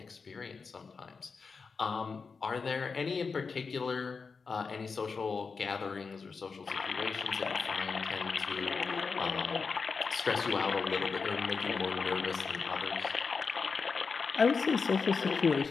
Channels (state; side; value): quieter; right; 5.0 dB